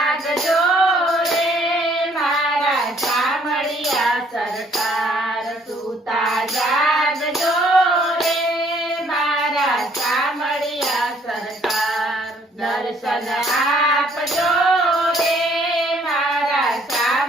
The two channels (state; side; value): normal; both; correlation 0.63